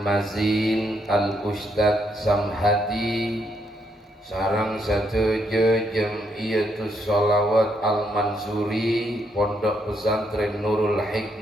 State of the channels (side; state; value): both; normal; correlation 0.75